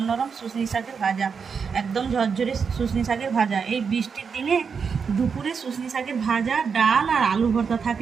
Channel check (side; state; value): left; quieter; 6.0 dB